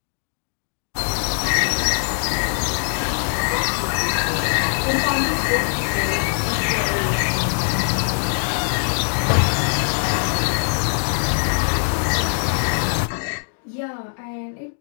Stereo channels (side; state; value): right; silent; digital silence